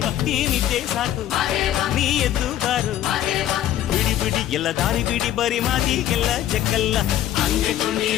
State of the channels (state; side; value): quieter; right; 12.2 dB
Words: ಈ ನಿದ್ದೆ ಸಾಕು ನೀ ಎದ್ದು ಬಾರು, ಬಿಡಿ ಬಿಡಿ ಎಲ್ಲ ದಾರಿ ಬಿಡಿ, ಬರಿ ಮಾತಿಗೆಲ್ಲ ಜಗ್ಗಲ್ಲ. ಹಂಗೆ